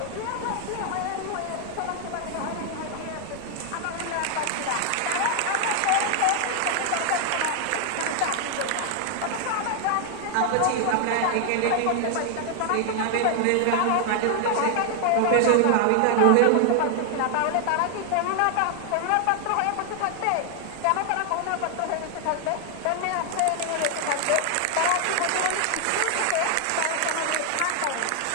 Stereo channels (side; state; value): both; different; correlation 0.00